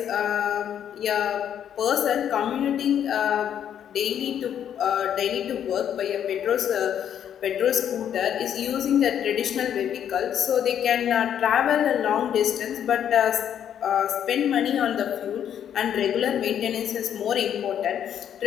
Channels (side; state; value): right; quieter; 9.4 dB